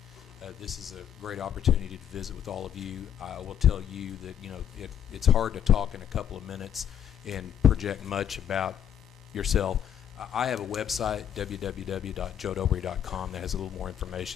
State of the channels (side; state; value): right; quieter; 9.3 dB